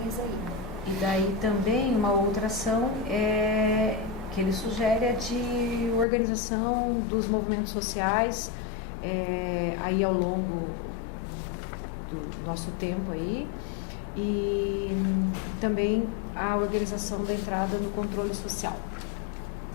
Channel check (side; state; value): right; drops out; at 6.1 s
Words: aí. E daí também uma outra ação que ele sugere é de organização dos movimentos sociais, aí ao longo do nosso tempo aí, e também a organização da entrada no controle social.